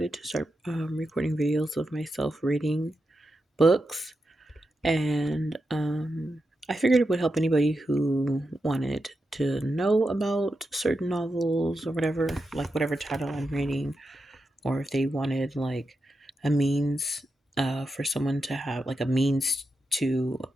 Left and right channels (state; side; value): normal; both; correlation 0.88